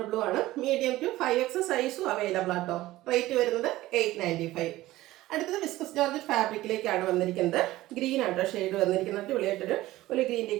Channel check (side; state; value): left; quieter; 16.7 dB